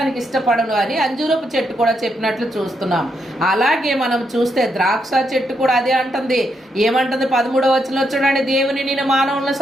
ఇష్టపడను అని అంజూరపు చెట్టు కూడా చెప్పినట్లు చూస్తున్నాం. అలాగే మనం చూస్తే ద్రాక్ష చెట్టు కూడా అదే అంటుంది. ఏమంటుంది? 13వ వచనంలో చూడండి, దేవుని నేను మానవులను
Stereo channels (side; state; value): both; normal; correlation 0.80